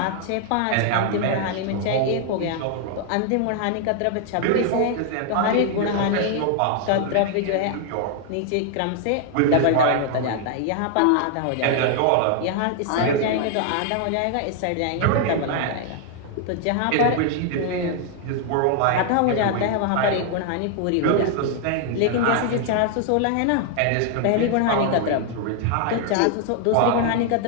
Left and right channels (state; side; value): different; both; correlation 0.00